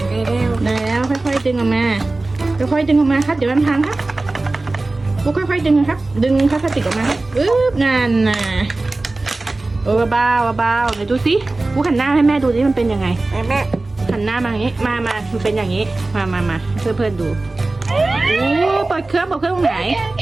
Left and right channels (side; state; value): left; quieter; 3.1 dB